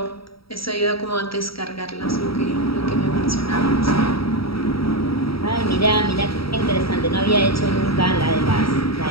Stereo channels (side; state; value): right; late; 0.75 ms